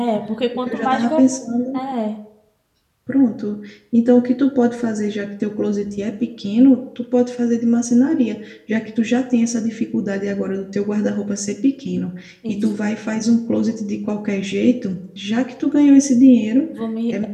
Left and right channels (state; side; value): identical; both; correlation 1.00